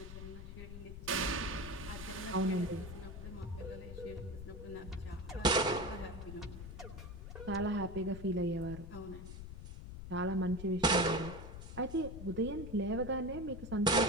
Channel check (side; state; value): left; noise; rumble, 10 dB below the sound